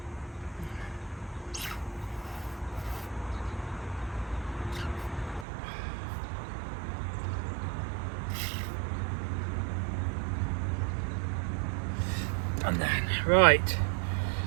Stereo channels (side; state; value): left; drops out; at 5.5 s